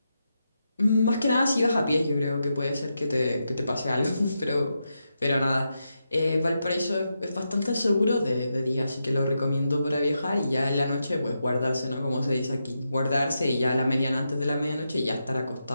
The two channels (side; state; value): both; inverted; correlation -0.86